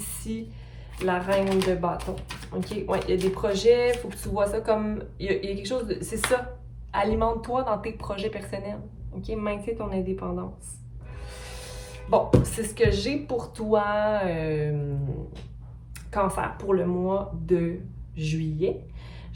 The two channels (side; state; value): both; identical; correlation 1.00